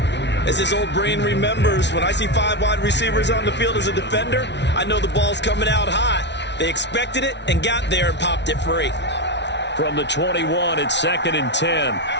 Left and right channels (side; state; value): right; late; 0.51 ms